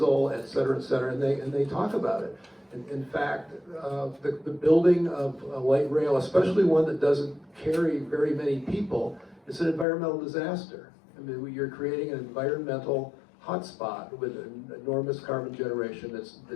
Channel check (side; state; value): right; drops out; at 9.9 s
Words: et cetera, and they talk about it. In fact, the building of a light rail, especially one that doesn't carry very many people, is an environmental disaster. I mean, you're creating an environmental hotspot with an enormous carbon generation